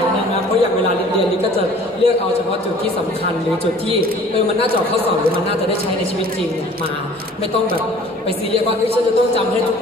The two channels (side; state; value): both; normal; correlation 0.50